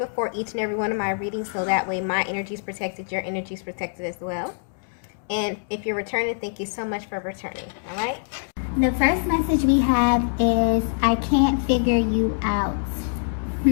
each and every one of my readings, so that way my energy is protected, your energy is protected as well. And if you're returning, thank you so much for returning. All right? The first message we have is, I can't figure you out.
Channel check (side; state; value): right; silent; digital silence